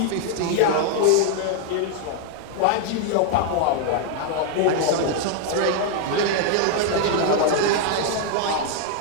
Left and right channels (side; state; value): both; different; correlation 0.00